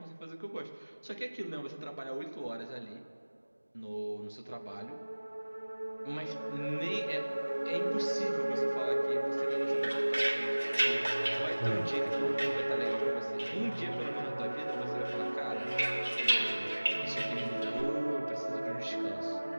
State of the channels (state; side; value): inverted; both; correlation -1.00